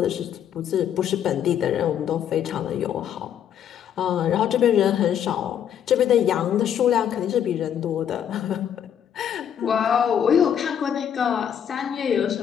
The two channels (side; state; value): right; quieter; 9.2 dB